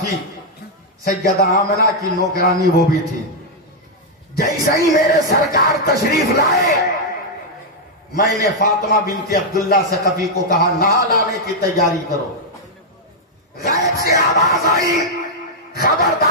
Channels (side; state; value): both; normal; correlation -0.02